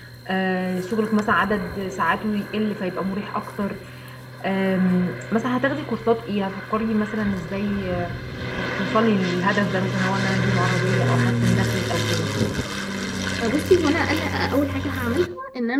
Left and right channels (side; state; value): both; identical; correlation 1.00